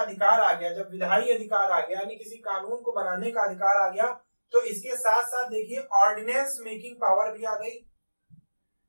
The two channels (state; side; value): inverted; both; correlation -1.00